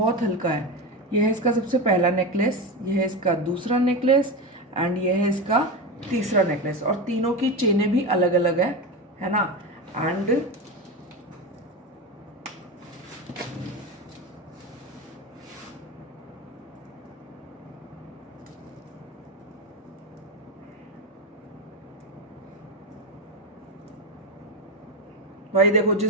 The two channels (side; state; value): both; normal; correlation 0.19